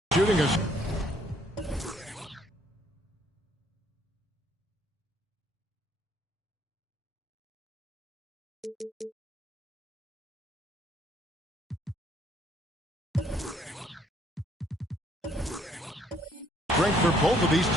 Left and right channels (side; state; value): both; normal; correlation 0.65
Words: Shooting us. Strength for both of these